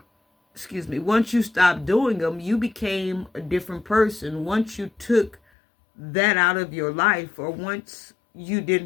once you stopped doing them, you became a different person. Once you took that out of your life, or once you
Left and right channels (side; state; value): right; drops out; at 5.4 s